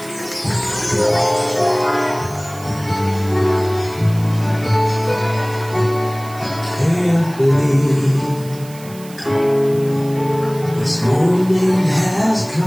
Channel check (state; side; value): noise; right; hiss, 20 dB below the sound